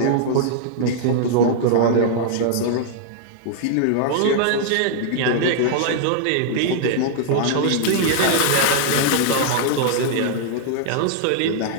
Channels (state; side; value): different; both; correlation -0.01